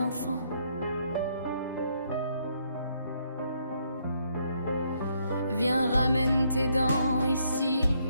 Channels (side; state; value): both; inverted; correlation -0.72